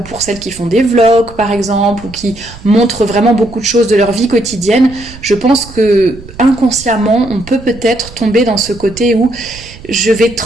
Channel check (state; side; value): noise; right; rumble, 17 dB below the sound